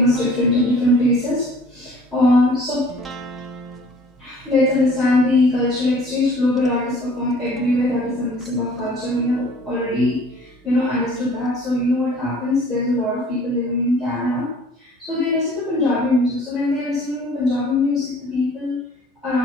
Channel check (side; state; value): both; normal; correlation 0.52